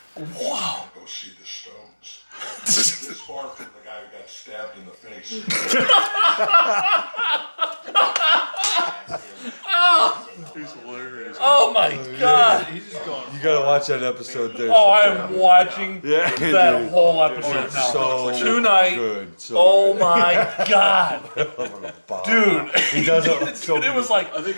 Wow. Go see the Stones. This far from the guy who got stabbed in the face. He's hilarious. Oh my God. He's just going. You gotta watch that episode, dude. Oh, I am watching Yeah, that dude. whole episode It's now. so Tonight. good. So Oh my God. good. Dude. He does it so Dude, it was like, I think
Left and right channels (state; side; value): inverted; both; correlation -1.00